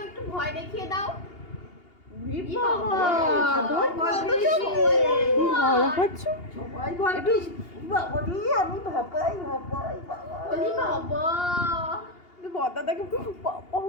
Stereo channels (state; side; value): late; right; 2.8 ms